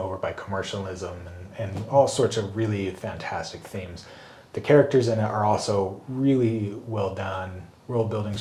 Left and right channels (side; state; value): both; identical; correlation 1.00